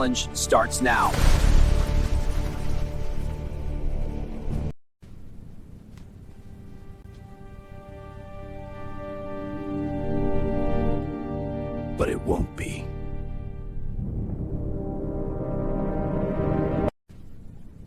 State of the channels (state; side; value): identical; both; correlation 1.00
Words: starts now. But it won't be.